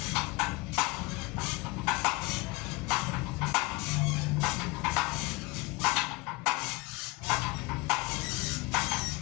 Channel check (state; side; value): quieter; right; 23.4 dB